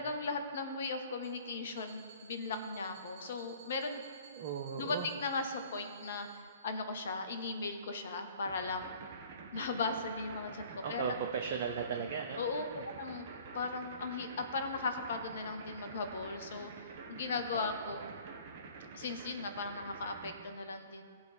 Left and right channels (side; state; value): both; inverted; correlation -0.51